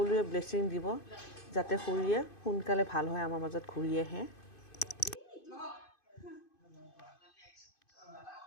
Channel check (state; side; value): late; right; 2.5 ms